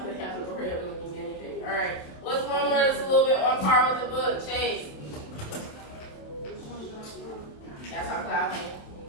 they have an Oreo looking anything? Alright. What's one word that's a little bit on par with the book? Chase. That's how cloud came.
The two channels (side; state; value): right; late; 27 ms